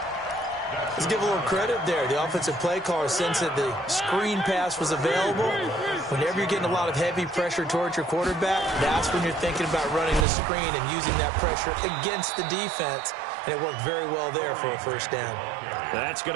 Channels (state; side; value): drops out; left; at 10.2 s